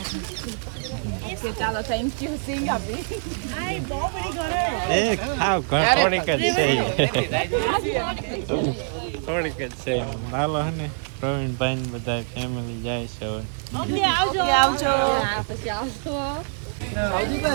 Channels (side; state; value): left; silent; digital silence